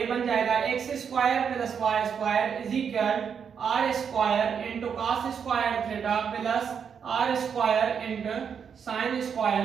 बन जाएगा x square plus y square is equal r square into cos square theta plus r square into sin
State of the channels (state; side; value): quieter; left; 7.1 dB